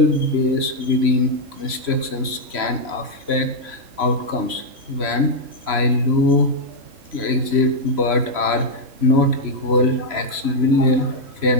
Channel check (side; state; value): left; late; 3.0 ms